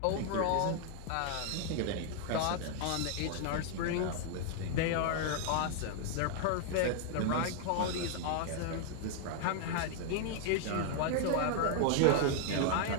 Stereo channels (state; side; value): different; both; correlation 0.00